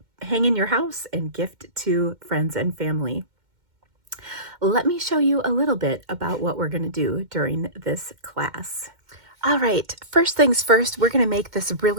hang in your house and gift to friends and family. Let me show you a little bit about what we're going to do during this class. All right, first things first, we're going to make this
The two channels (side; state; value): left; late; 2.1 ms